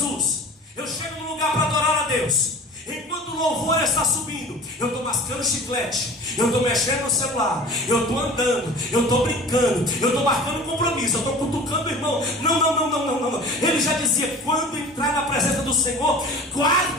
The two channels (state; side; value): normal; both; correlation 0.41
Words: eu chego num lugar para adorar a Deus, enquanto o louvor está subindo, eu estou mascando chiclete, eu estou mexendo no celular, eu estou andando, eu estou brincando, eu estou marcando compromisso, eu estou cutucando o irmão. Não. Ele já dizia: quando entrar na presença do Senhor,